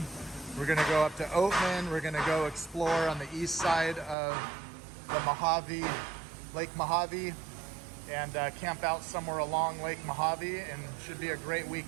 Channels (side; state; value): left; drops out; at 4.2 s